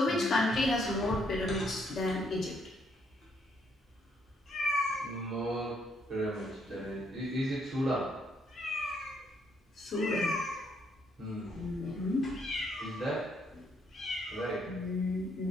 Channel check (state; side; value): normal; both; correlation 0.72